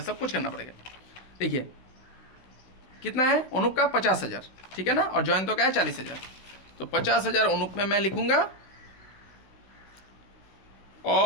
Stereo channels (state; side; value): late; right; 16 ms